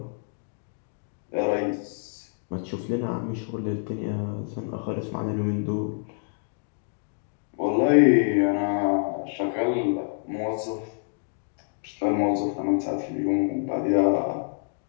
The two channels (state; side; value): silent; right; 60 dB below the other